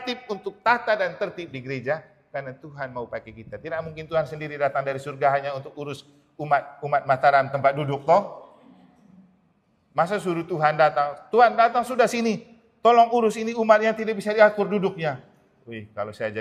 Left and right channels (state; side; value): identical; both; correlation 1.00